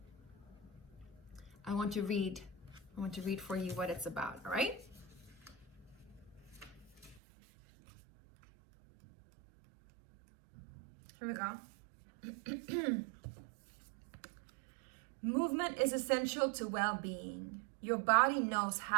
I want to read for you what it's about, all right? Here we go. Movement is essential to well-being. Your body knows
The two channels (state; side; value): drops out; left; at 7.2 s